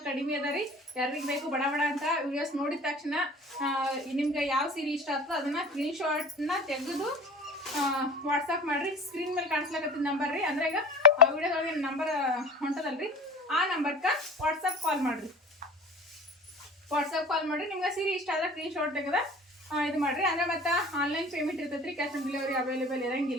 ಕಡಿಮೆ ಅದ ರೀ. ಯಾರಿಗೆ ಬೇಕು ಬಡ ಬಡ ಅಂತ ವಿಡಿಯೋಸ್ ನೋಡಿದ ತಕ್ಷಣ ನಿಮ್ಗೆ ಯಾವ ಸೀರೆ ಇಷ್ಟ ಆಗ್ತದೆ ಅದನ್ನ ಸ್ಕ್ರೀನ್ ಶಾಟ್ನ ತೆಗೆದು ವಾಟ್ಸಪ್ ಮಾಡ್ರಿ. ಸ್ಕ್ರೀನ್ ಮೇಲೆ ಕಾಣಿಸ್ಲಾಕತ್ತಿದ ನಂಬರ್ ರೀ. ಅಂದ್ರೆ ಈಗ ಆ ವಿಡಿಯೋದೊಳಗೆ ನಂಬರ್ ಹೊಂಟದಲ್ರಿ, ಆ ನಂಬರ್ಗೆ ವಾಟ್ಸಪ್ ಕಾಲ್ ಮಾಡ್ರಿ. ನಿಮ್ಗೆ ಸೀರೆ ಇಷ್ಟ ಆದ್ರೆ ಸ್ಕ್ರೀನ್ ಶಾಟ್ ತೆಗೆದ ಇದು ಮಾಡ್ರಿ. ಅಂದ್ರೆ ಮತ್ತೆ ಆನ್ಲೈನ್ ಪೇಮೆಂಟ್ ಇರ್ತೈತ್ರಿ. ಕ್ಯಾಶ್ ಆನ್ ಡೆಲಿವರಿ ಅವೈಲೇಬಲ್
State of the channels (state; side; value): normal; both; correlation 0.40